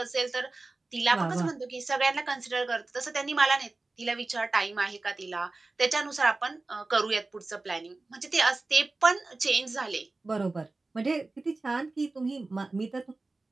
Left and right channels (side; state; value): left; quieter; 3.3 dB